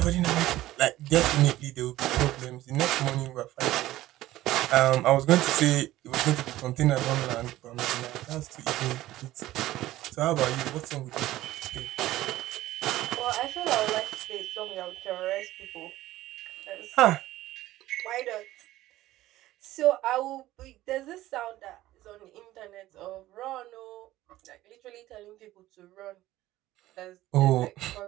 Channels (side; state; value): left; quieter; 15.7 dB